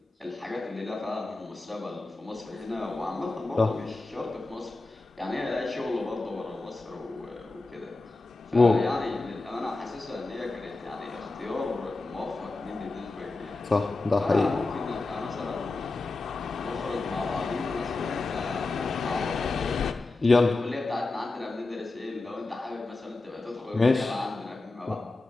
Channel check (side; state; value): right; quieter; 3.2 dB